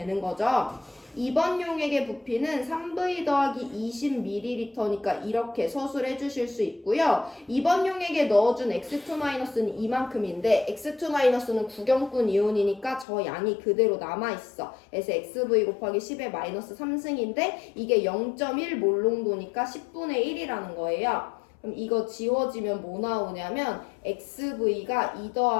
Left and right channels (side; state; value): right; drops out; at 13.1 s